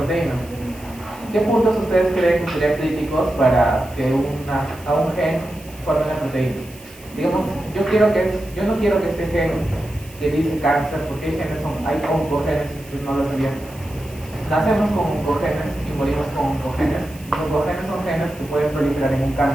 ¿Qué puntos ustedes creen que serían críticos para que a un gen forme una proteína? Digamos, yo no quiero que este gen que dice cáncer, porque hay oncogenes, no lo sabían. Nacemos con oncogenes y morimos con oncogenes. Los oncogenes son genes que pueden proliferar en un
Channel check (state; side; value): noise; right; hiss, 21 dB below the sound